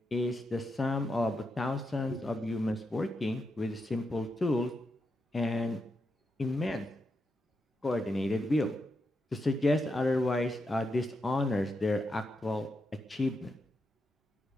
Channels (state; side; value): normal; both; correlation 0.84